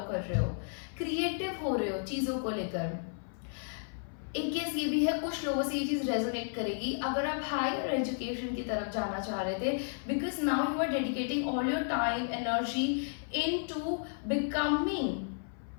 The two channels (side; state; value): right; silent; 56 dB below the other